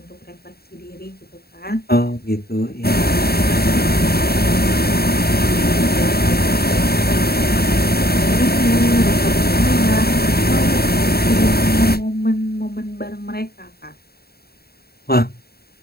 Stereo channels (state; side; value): late; right; 0.45 ms